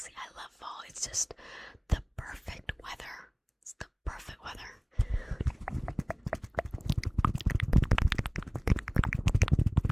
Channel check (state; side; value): identical; both; correlation 1.00